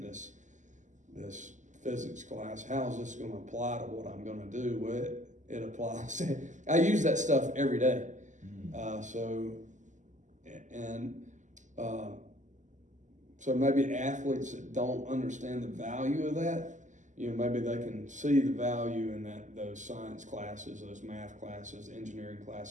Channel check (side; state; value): left; late; 0.36 ms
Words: physics class? How is this going to apply to what I'm going to do? Well, it applies. I use that stuff every day. So maybe athletes that don't understand the value of that, maybe they can see the value in those science classes, those math classes, engineering